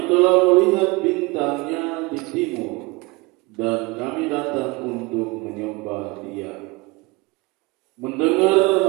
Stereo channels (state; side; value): quieter; left; 24.9 dB